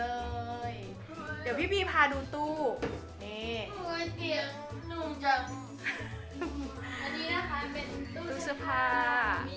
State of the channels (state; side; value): identical; both; correlation 1.00